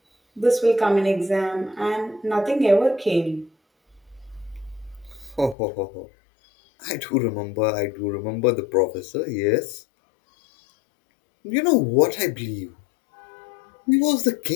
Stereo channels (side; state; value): right; drops out; at 5.6 s